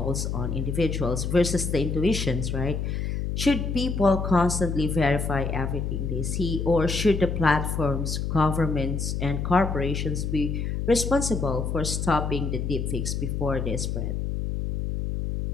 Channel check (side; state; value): left; noise; hum, 2 dB below the sound